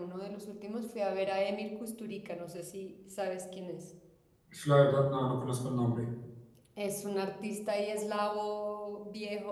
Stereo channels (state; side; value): identical; both; correlation 1.00